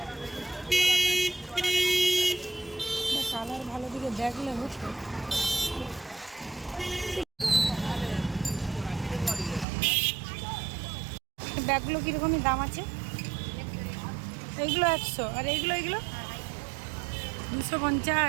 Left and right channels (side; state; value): left; drops out; at 9.7 s